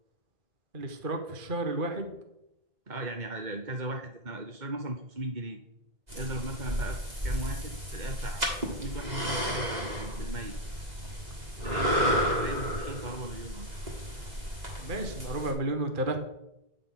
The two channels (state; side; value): late; left; 2.0 ms